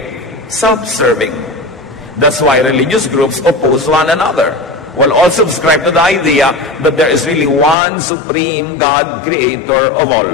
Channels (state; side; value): drops out; right; at 7.8 s